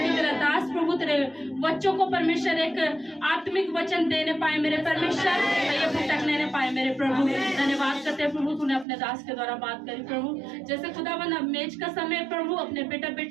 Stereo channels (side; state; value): left; drops out; at 8.8 s